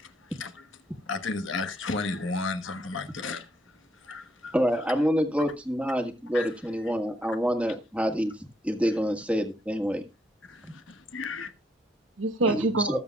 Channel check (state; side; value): normal; both; correlation 0.72